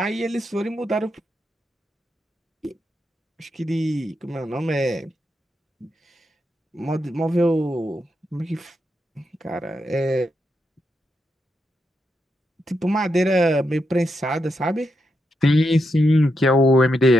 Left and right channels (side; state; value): both; normal; correlation 0.84